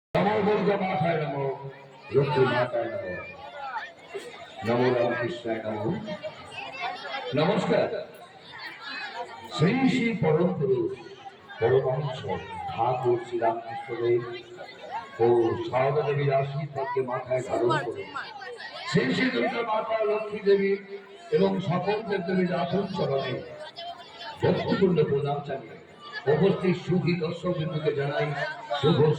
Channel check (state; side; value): identical; both; correlation 1.00